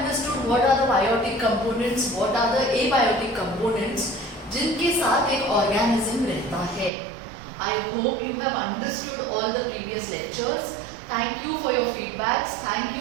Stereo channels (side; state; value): left; drops out; at 6.9 s